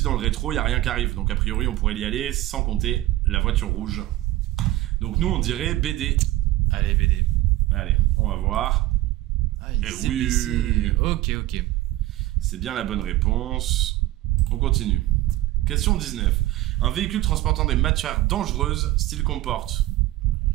dans le rétro, il y a rien qui arrive. Donc a priori on pourrait y aller sans compter la voiture rouge. Donc nous on dirait BD. Allez BD. Allez, on va voir. Ah, oui. Ok. C'est bien la bonne réponse. On continue. Question 19. Un véhicule transportant des matières dangereuses s'il comporte...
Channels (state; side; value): quieter; left; 16.1 dB